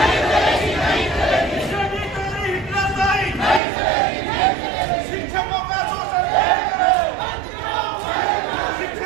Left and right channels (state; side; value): drops out; left; at 3.6 s